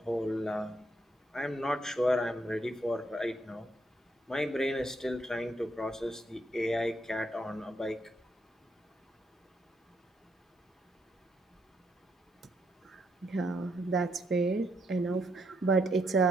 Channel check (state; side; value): normal; both; correlation 0.75